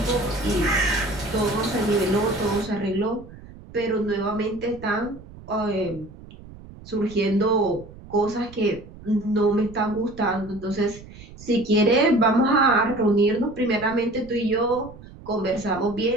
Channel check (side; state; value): right; noise; rumble, 18 dB below the sound